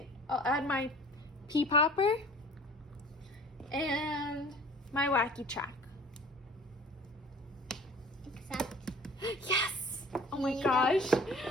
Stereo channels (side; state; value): both; normal; correlation 0.46